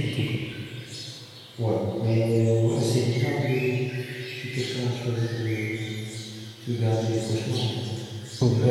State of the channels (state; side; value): identical; both; correlation 1.00